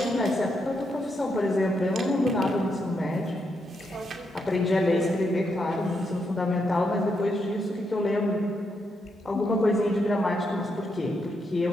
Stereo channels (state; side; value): normal; both; correlation 0.81